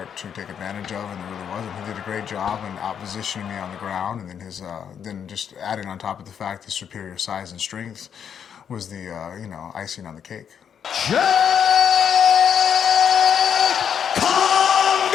to take advantage of, and there really wasn't. He did a great job in out-positioning me on the ground, and then then just adding on top of the fact his superior size and strength was the, icing on the cake. Cheick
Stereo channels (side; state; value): right; quieter; 8.1 dB